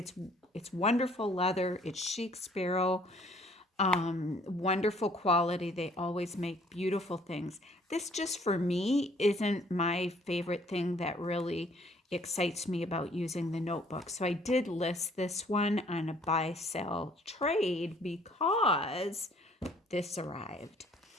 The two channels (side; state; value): both; normal; correlation 0.60